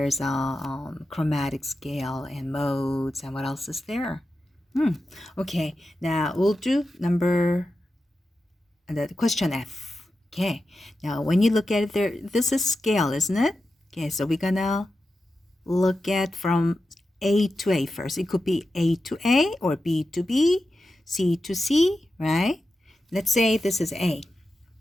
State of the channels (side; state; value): both; normal; correlation 0.91